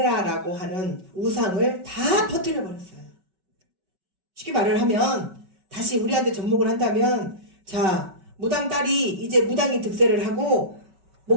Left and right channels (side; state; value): left; late; 5.3 ms